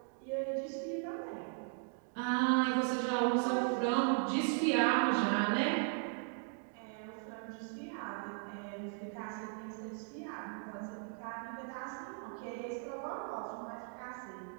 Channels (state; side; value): silent; left; 53 dB below the other